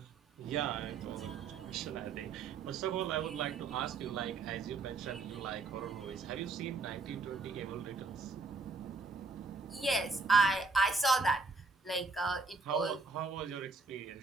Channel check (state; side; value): quieter; left; 4.0 dB